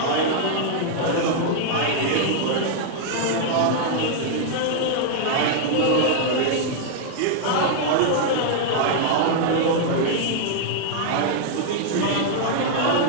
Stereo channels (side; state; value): both; different; correlation -0.01